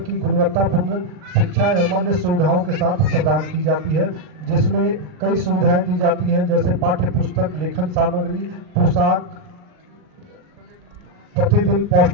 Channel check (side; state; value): left; late; 39 ms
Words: की गुणवत्तापूर्ण शिक्षा एवं अन्य सुविधाओं के साथ प्रदान की जाती है, जिसमें कई सुविधाएं दी जाती हैं जैसे पाठ्य पुस्तक, लेखन सामग्री, पोशाक, प्रतिदिन